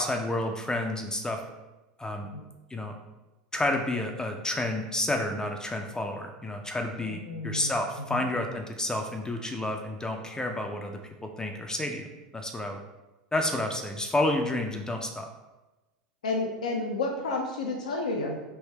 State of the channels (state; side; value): normal; both; correlation 0.45